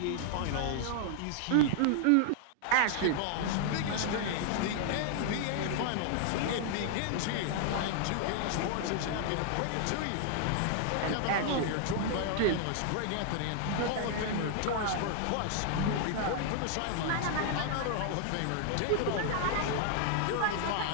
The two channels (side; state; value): both; different; correlation 0.00